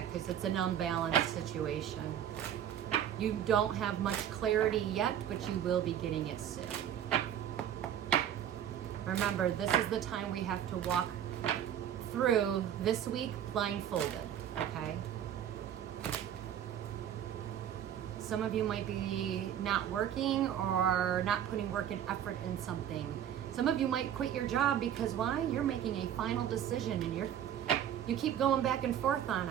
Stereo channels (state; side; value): quieter; left; 10.1 dB